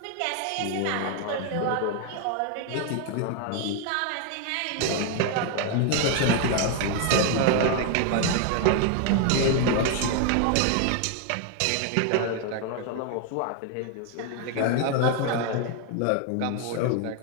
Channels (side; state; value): both; different; correlation 0.00